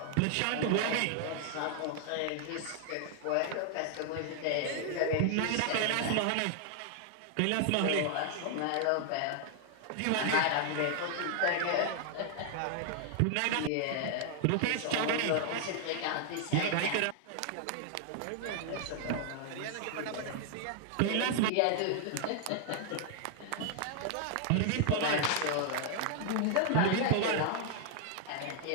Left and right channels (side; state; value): both; different; correlation 0.00